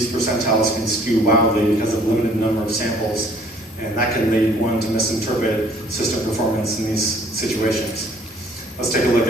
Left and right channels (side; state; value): both; normal; correlation 0.57